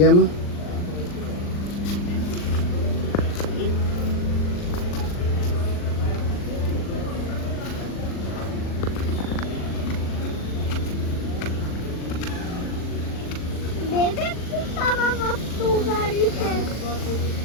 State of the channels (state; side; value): late; right; 40 ms